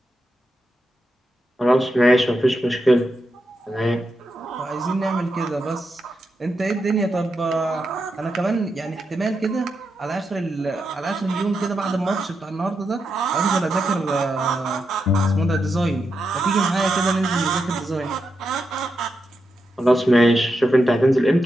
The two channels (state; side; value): normal; both; correlation 0.86